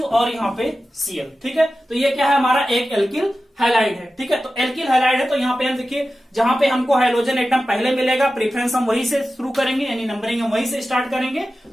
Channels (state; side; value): normal; both; correlation 0.94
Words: और यहाँ पे Cl। ठीक है, तो ये क्या है, हमारा एक एल्किल हैलाइड है। ठीक है, तो एल्किल हैलाइड है तो यहाँ पे हम देखिए जहां पे हमको हाइड्रोजन एटम पहले मिलेगा, प्रेफरेंस हम वहीं से शुरू करेंगे, यानी नंबरिंग हम वहीं से स्टार्ट करेंगे।